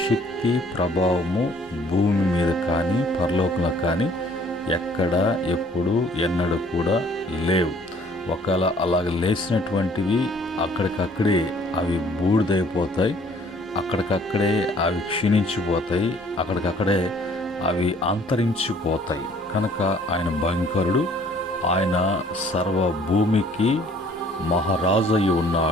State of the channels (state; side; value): normal; both; correlation 0.58